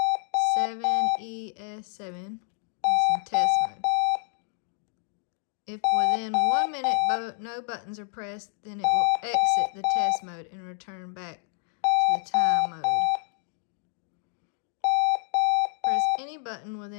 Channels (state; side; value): silent; right; 58 dB below the other